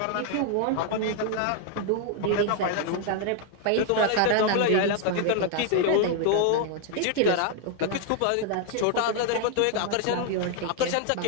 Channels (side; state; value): both; different; correlation 0.00